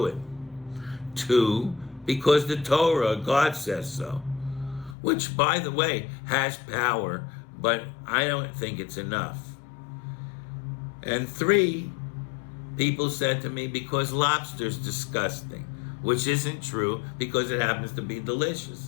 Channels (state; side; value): drops out; right; at 5.0 s